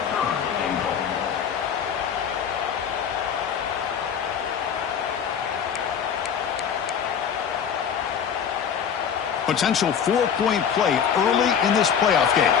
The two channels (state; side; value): quieter; right; 7.7 dB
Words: Potential 4-point play early in this playoff game.